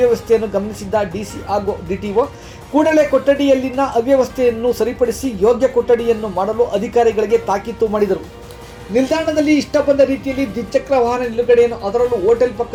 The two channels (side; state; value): both; identical; correlation 1.00